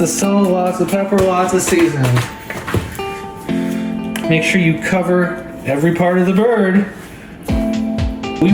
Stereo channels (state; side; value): identical; both; correlation 1.00